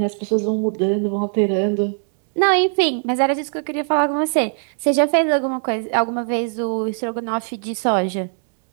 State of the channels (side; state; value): left; silent; 66 dB below the other